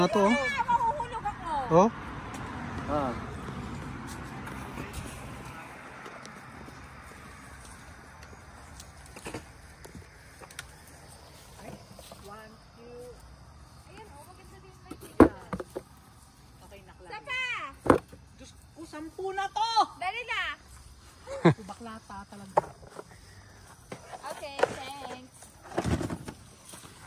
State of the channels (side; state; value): both; identical; correlation 1.00